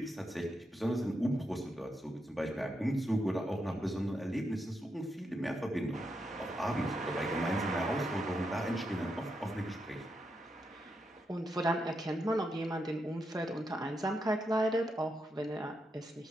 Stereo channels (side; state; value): both; normal; correlation 0.83